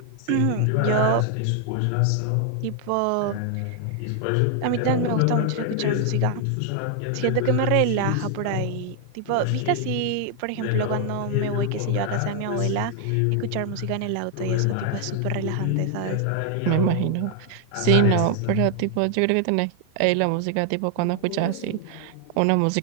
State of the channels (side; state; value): both; different; correlation 0.00